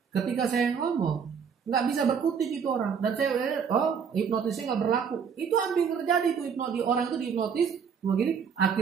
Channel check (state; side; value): quieter; left; 6.7 dB